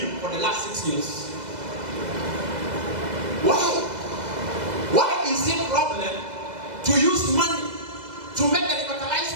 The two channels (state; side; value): late; left; 2.0 ms